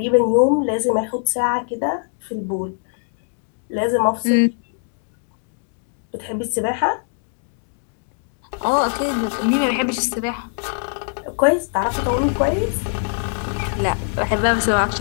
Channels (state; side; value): silent; right; digital silence